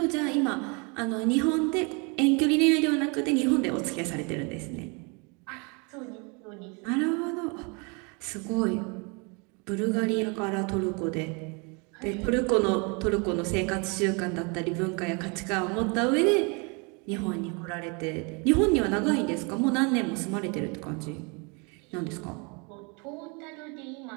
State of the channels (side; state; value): left; quieter; 32.1 dB